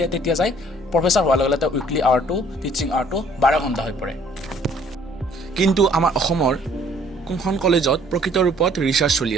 তেতিয়া যায় প্ৰফেছৰ হোৱাৰ লগে লগে তেওঁ উইকলি আৱাৰটো টিচিং আৱাৰটো 12 ঘণ্টা হৈ পৰে কিন্তু আমাৰ অসমৰ কোনখন কলেজত প্ৰকৃত ৰূপত ৰিচাৰ্চ চলি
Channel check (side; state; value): both; normal; correlation 0.59